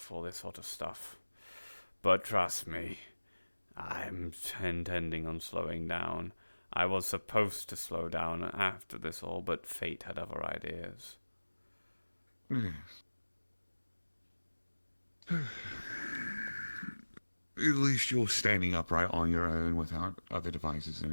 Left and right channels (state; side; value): inverted; both; correlation -1.00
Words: this sort of stuff. But trust me, I'm intending on slowing down. I was supposed to slow down after this all, but fate had other ideas. Yes. At least you're standing upright on your own without other devices